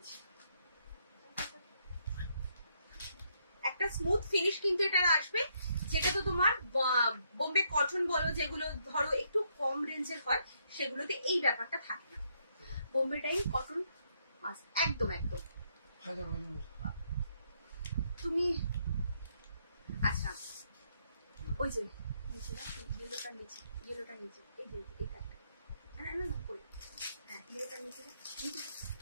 একটা স্মুথ ফিনিশ কিন্তু এটা আসবে। যেটা তো তোমার বোম্বে কটন বলো, যেগুলো ধরো একটু কম রেঞ্জের হয়, সেগুলোতে এই ব্যাপারটা থাকে না। বোম্বে ডাইং কটন একদম একদম। তুমি আচ্ছা, ওই যে নিচে না, ইয়েলোটার নিচে, ইয়েলোটার নিচে, এই যে এটা না না না করে, হ্যাঁ ইয়েলোটার নিচে নিচে,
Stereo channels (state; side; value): inverted; both; correlation -0.74